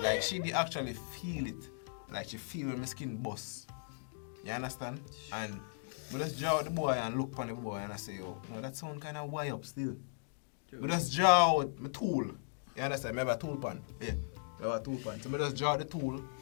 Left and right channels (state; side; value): silent; right; digital silence